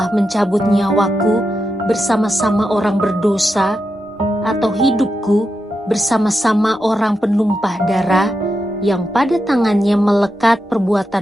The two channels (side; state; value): both; normal; correlation 0.87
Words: mencabut nyawaku bersama-sama orang berdosa, atau hidupku bersama-sama orang penumpah darah yang pada tangannya melekat